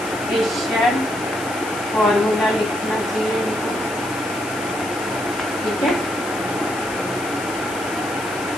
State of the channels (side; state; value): left; noise; hiss, 13 dB below the sound